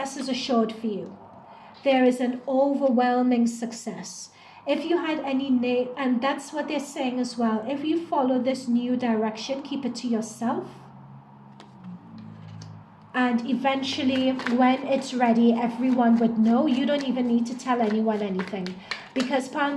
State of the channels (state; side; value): identical; both; correlation 1.00